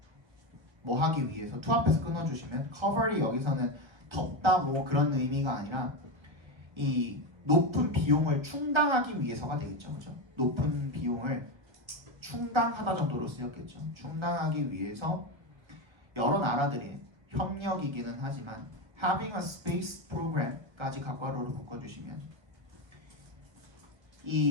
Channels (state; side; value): late; left; 1.2 ms